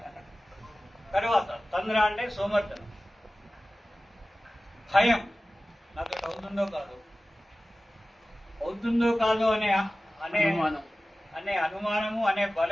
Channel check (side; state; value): both; normal; correlation 0.96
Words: తర్వాత తంద్ర అంటే సోమర్థనం. భయం, నాకు అవుతుందో కాదు. అవుతుందో కాదో అనే అనే అనే అనుమానము అనే